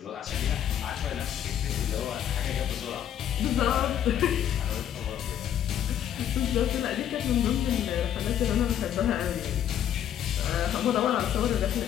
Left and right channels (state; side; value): quieter; right; 10.2 dB